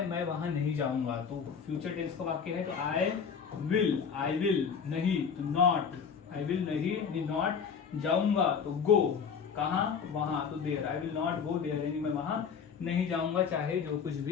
मैं वहां नहीं जाऊंगा। तो फ्यूचर टेंस का वाक्य है तो आई विल नहीं, तो नॉट, आई विल नहीं नॉट, जाऊंगा तो गो, कहाँ वहां, तो देर, आई विल नॉट गो देर यानी मैं वहां नहीं जाऊंगा, चाहे जो कुछ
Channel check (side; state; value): right; quieter; 6.5 dB